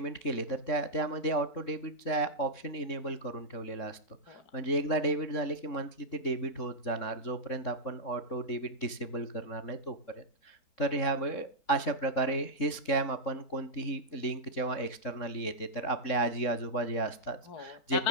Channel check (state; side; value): late; right; 3.7 ms